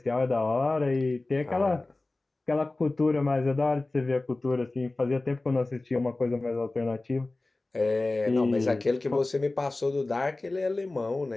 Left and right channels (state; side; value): quieter; right; 3.0 dB